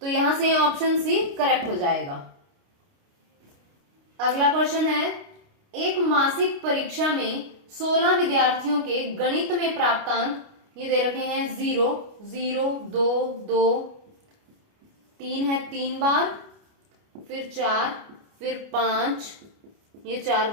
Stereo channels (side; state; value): left; late; 29 ms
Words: यहां से ऑप्शन सी करेक्ट हो जाएगा। अगला क्वेश्चन है, एक मासिक परीक्षा में 16 विद्यार्थियों के गणित में प्राप्तांक ये दे रखे हैं 0, 0, 2, 2, 3 है 3 बार, फिर 4, फिर 5, ये 4